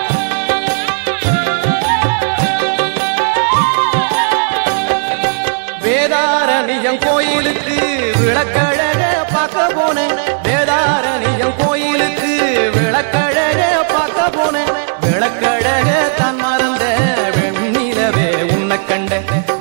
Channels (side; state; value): left; silent; digital silence